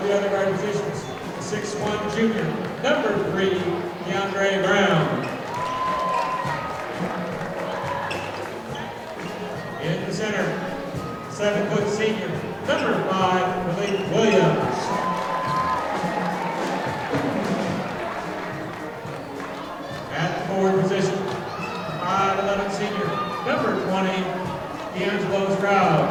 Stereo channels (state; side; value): identical; both; correlation 1.00